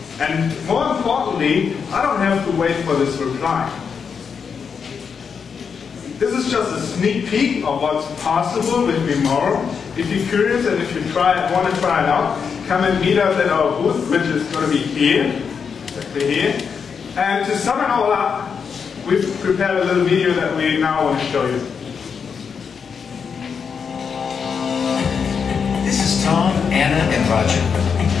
And more importantly, I don't have to wait for this reply. This is just a sneak peek of what's possible with Memaro. If you're curious and if you want to try it out, come and meet us at our booth, which is going to be here, exactly here. And to sum it all up, we've prepared a little video that we now want to show you. This is Tom, Anna, and Roger.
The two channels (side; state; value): right; quieter; 6.3 dB